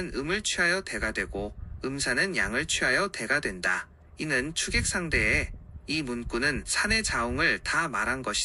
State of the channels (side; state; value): both; identical; correlation 1.00